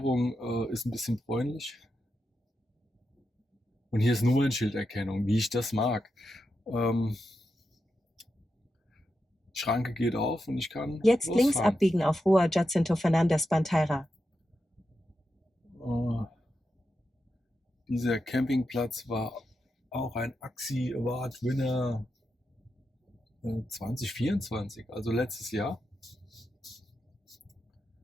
ist ein bisschen bräunlich. Und hier ist Nummernschilderkennung, wie ich das mag. Schranke geht auf und ich kann Jetzt links losfahren. abbiegen auf Rua Jacinto Fernandes Bandeira. Dieser Campingplatz war auch ein AXI Award Winner 2024, also letztes Jahr.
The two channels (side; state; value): both; normal; correlation 0.87